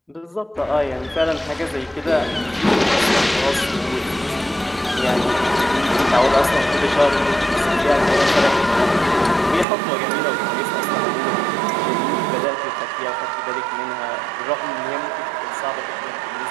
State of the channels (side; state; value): left; drops out; at 9.7 s